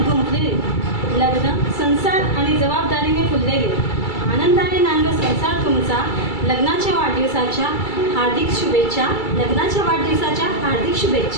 गुंफलेले लग्न, संसार आणि जबाबदारीने फुललेले आनंदाने नांदो संसार तुमचा। लग्नाच्या वाढदिवसाच्या हार्दिक शुभेच्छा, लग्नाच्या वाढदिवसाच्या हार्दिक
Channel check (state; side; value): late; right; 2.3 ms